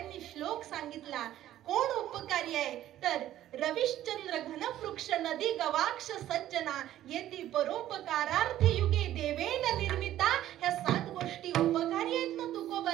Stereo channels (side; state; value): left; quieter; 13.0 dB